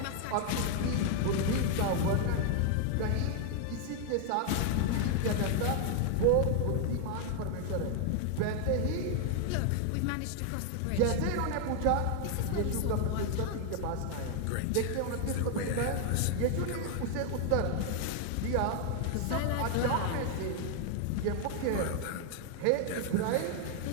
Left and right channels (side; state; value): both; different; correlation 0.00